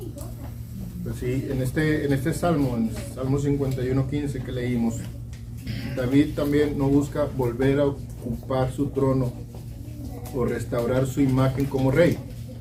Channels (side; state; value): both; identical; correlation 1.00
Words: Pues sí, en este salmo, en Salmo 51:15 que leímos, David también no busca volver a ocupar su trono o restaurar su imagen como rey.